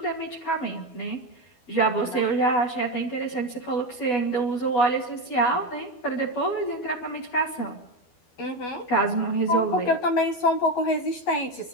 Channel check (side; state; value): right; late; 12 ms